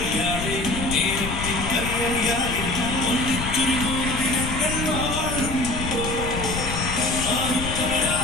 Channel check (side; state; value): left; noise; rumble, 5 dB below the sound